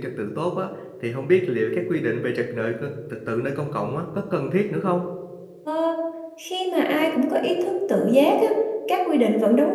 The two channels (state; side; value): identical; both; correlation 1.00